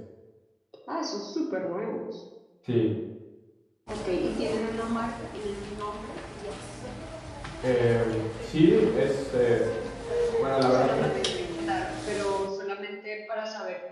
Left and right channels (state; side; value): identical; both; correlation 1.00